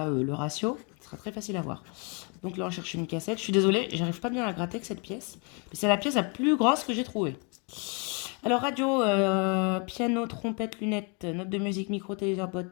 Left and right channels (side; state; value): right; quieter; 33.9 dB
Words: le ratio. Ce sera très facile à voir. Donc là, on cherche une cassette. Je suis désolée, j'arrive pas bien à gratter avec cette pièce. Mais c'est la pièce la plus grosse que j'ai trouvée. Alors, radio, piano, trompette, lunettes, notes de musique, micro, téléviseur,